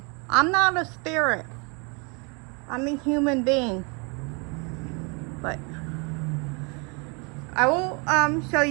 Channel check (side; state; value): left; quieter; 32.4 dB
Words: I'm not a spirit. I'm a human being. But I will show